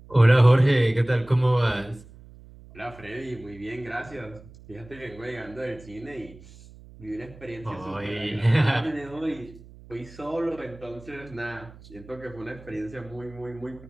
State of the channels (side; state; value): right; noise; hum, 20 dB below the sound